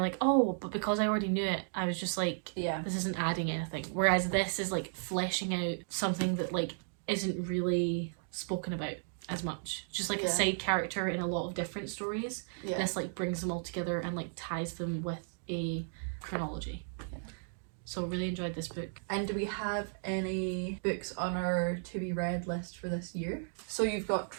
oh, but because I already knew it, I was just like, this isn't adding anything. Whereas this is like fleshing out something that like isn't really spoken about as much. Just like a side character in a lot of different stories. This like brings them all together and like ties them with a chronology. So really enjoyed this book. And do we have any books on our to be read list for this year? So you've got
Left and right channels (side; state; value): left; silent; digital silence